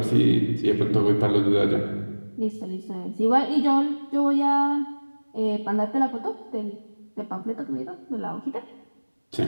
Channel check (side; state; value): both; inverted; correlation -1.00